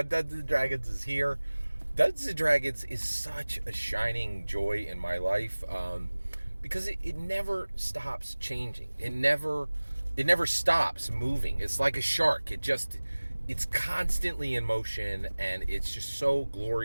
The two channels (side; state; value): both; inverted; correlation -1.00